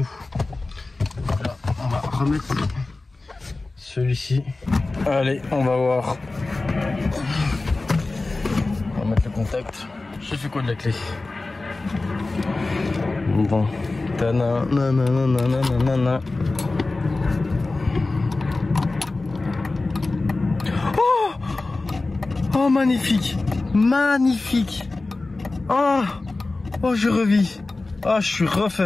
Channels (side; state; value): right; quieter; 3.3 dB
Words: Voilà, on va remettre celui-ci. Allez, on va voir. On va mettre le contact. J'ai fait quoi de la clé? Bon. Ta-na-na-na-na-na-na-na. Oh, magnifique, magnifique. Oh, oh, je revis. Oh, je suis